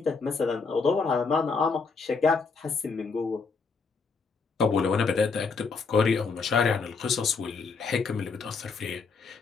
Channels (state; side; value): quieter; right; 4.7 dB